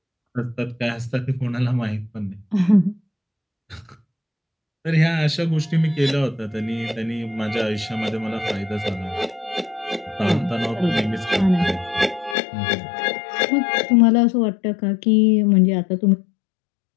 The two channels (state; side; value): drops out; right; at 12.4 s